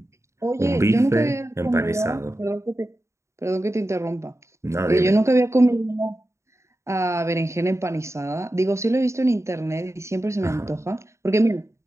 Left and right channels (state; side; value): late; left; 0.14 ms